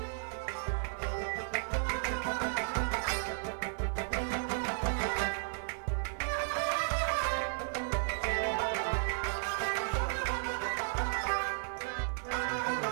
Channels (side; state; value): left; silent; 55 dB below the other